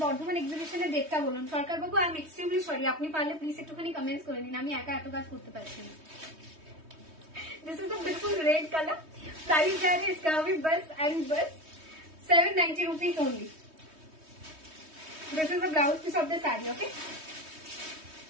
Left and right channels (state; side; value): late; left; 3.2 ms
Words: বর্ধমান এক্সিবিশনের ডেটটা বলুন। সরকার বাবু আই এম এক্সট্রিমলি সরি, আপনি পারলে প্লিজ একটুখানি কমেন্টস করে নিন, আমি একা এত কাজ করতে পারছি না। दिस इज अ बिल्कुल रेड कलर। प्राइस जा रहे इसका भी बस एंड बस 790 rupees only. This is the blouse piece of the sari, okay.